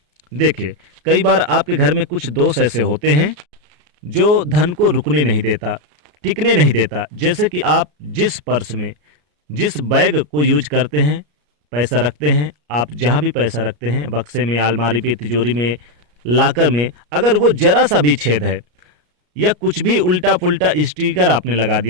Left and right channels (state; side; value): late; left; 34 ms